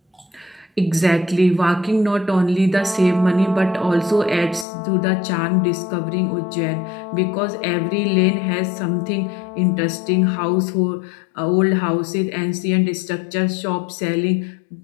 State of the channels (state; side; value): drops out; right; at 4.7 s